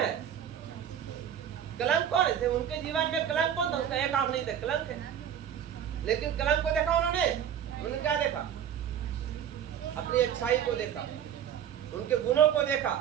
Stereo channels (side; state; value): left; quieter; 9.3 dB